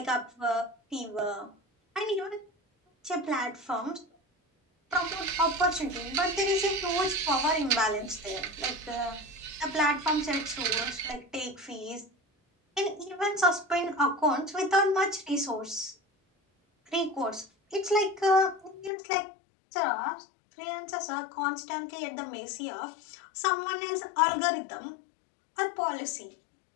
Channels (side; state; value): right; drops out; at 18.9 s